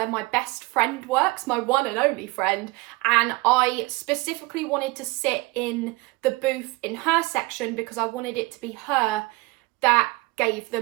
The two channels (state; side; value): quieter; left; 22.9 dB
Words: my best friend works, my one and only friend, and I specifically wanted to sit in the booth in her section because I wanted it to be her that gave